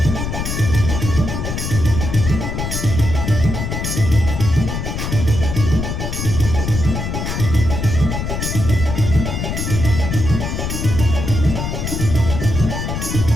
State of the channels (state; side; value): noise; left; rumble, 3 dB below the sound